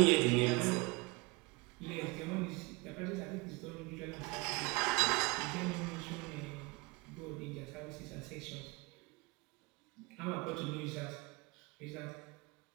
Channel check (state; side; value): quieter; left; 25.3 dB